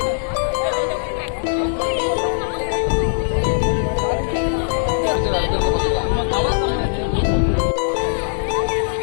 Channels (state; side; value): silent; right; digital silence